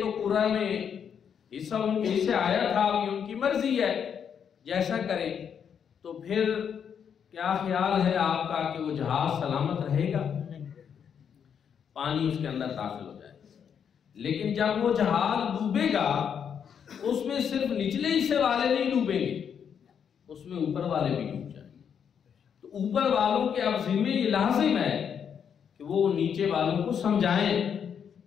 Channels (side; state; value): right; quieter; 7.7 dB